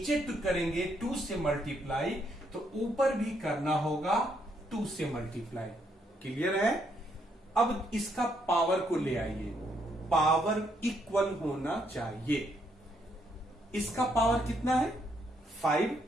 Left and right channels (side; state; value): both; normal; correlation 0.73